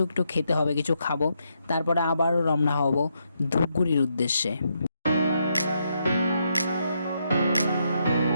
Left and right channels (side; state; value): both; inverted; correlation -0.79